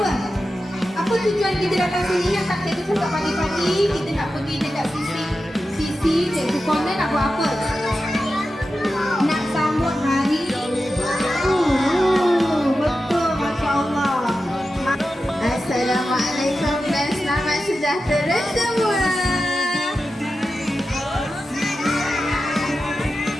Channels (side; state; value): both; normal; correlation 0.92